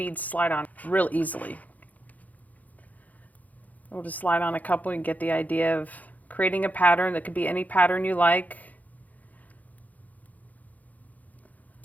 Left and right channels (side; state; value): right; late; 0.078 ms